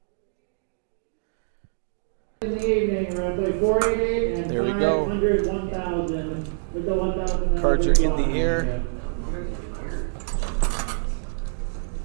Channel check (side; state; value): left; silent; digital silence